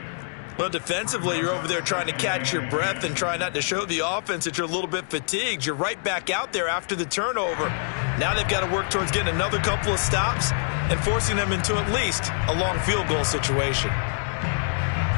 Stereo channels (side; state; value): right; silent; digital silence